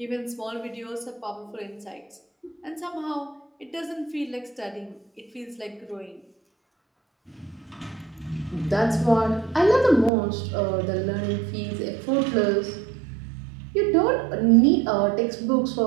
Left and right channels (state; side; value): drops out; left; at 10.1 s